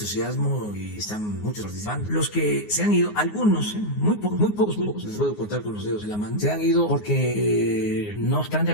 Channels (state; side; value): late; right; 9.6 ms